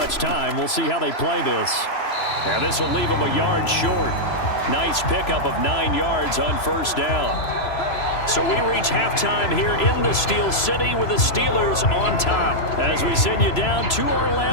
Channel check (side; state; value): right; late; 3.0 ms